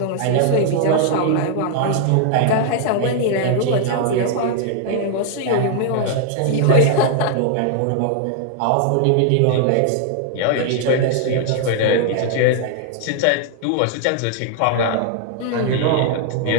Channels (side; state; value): both; different; correlation -0.01